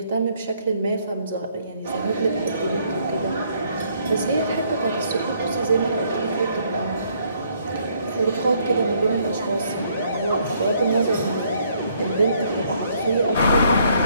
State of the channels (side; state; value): both; inverted; correlation -0.68